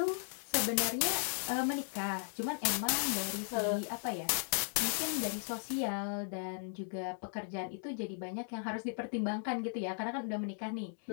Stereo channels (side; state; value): right; silent; digital silence